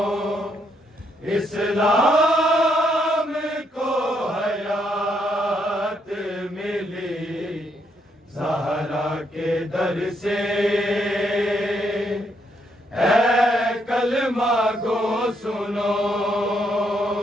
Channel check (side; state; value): both; normal; correlation 0.75